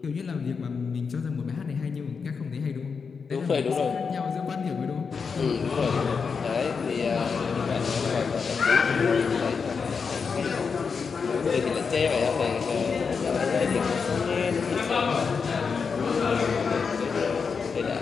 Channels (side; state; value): right; quieter; 5.5 dB